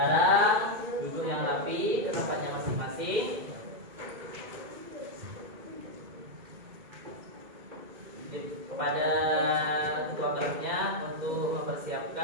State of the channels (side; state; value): left; late; 2.2 ms